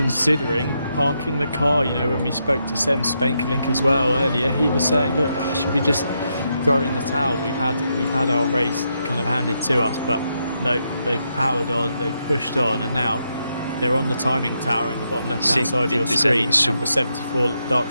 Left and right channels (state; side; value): inverted; both; correlation -0.82